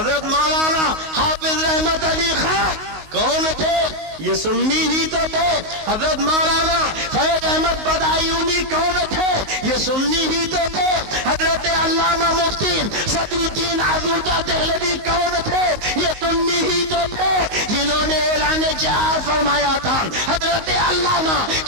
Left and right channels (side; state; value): left; late; 19 ms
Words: مولانا حافظ رحمت علی خان کون تھے؟ یہ سنی ہی تو تھے۔ حضرت مولانا فیض احمد بدایونی کون تھے؟ یہ سنی ہی تو تھے۔ حضرت علامہ مفتی صدر الدین آزردہ دہلوی کون تھے؟ یہ سنی ہی تو تھے جنہوں نے اعلان جہاد فرمایا تھا۔ حضرت علامہ